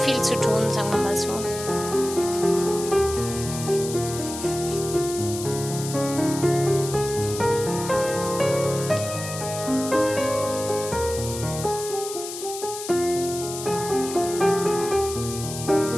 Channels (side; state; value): left; noise; hiss, 9 dB below the sound